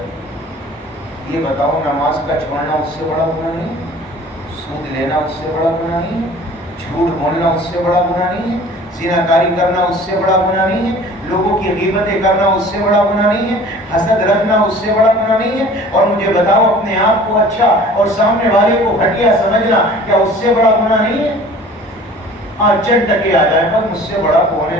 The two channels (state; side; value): normal; both; correlation 0.47